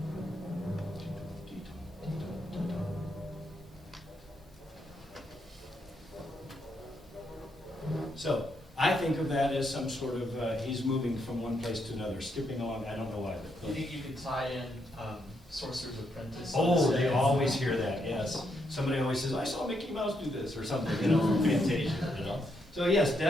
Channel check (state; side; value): normal; both; correlation 0.78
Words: So I think of that as some sort of, he's moving from one place to another, skipping along, I don't know why. Do you think you could tie in Sorcerer's Apprentice? Oh, they always hear that, yes. Somebody always says, I saw Mickey Mouse do this, or something, from Fantasia, So yes,